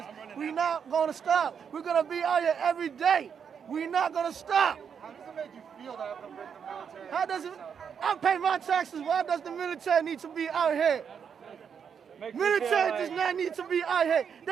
We're not going to stop. We're going to be out here every day. We're not going to stop. How does it make you feel to have to bring the military? How does it? I pay my taxes. Why does the military need to be out here? Military does not need to be out here.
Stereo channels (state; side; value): quieter; left; 7.2 dB